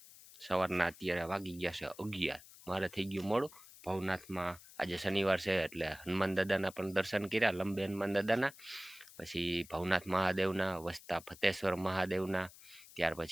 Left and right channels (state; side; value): noise; left; hiss, 20 dB below the sound